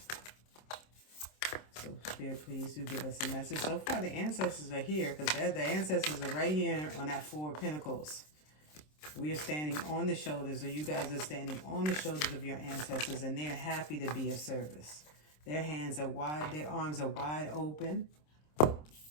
So Spirit, please do give us a message. So far the ancestors are here, because the ancestors are right here on that 4 of Pentacles. We are standing on the shoulders, or you guys are standing on the shoulders of your ancestors, and they're happy to be of service. Their hands are wide, their arms are wide open,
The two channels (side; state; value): right; late; 26 ms